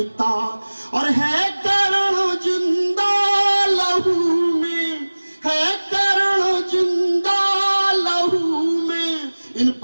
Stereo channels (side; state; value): both; inverted; correlation -1.00